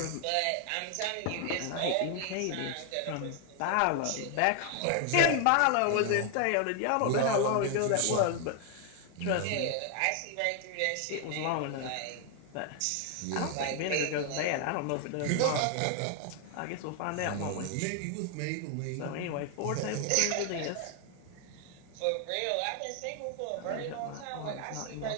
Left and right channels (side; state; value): both; different; correlation 0.00